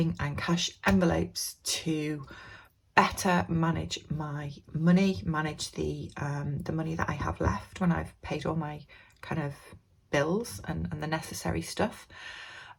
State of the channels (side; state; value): both; identical; correlation 1.00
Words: and cash envelopes to better manage my money, manage the money that I have left when I've paid all my kind of bills and the necessary stuff,